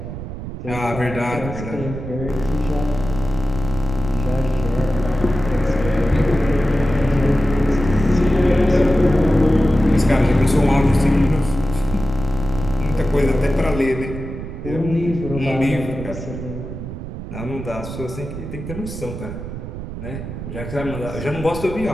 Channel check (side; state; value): right; noise; rumble, 8 dB below the sound